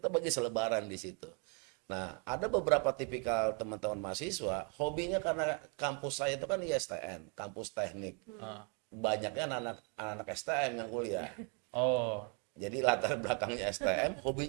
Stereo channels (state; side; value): quieter; left; 37.1 dB